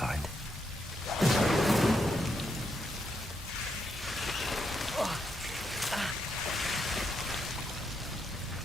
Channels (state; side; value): normal; both; correlation 0.80